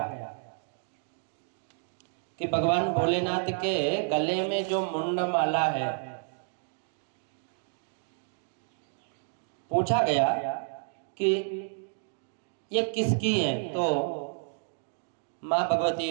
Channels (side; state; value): left; silent; digital silence